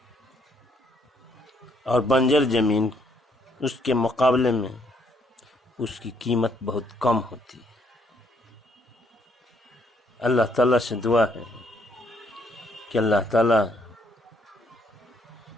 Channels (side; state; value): both; normal; correlation 0.69